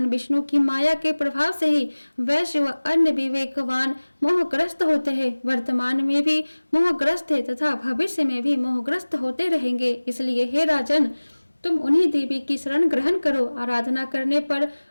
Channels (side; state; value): both; inverted; correlation -1.00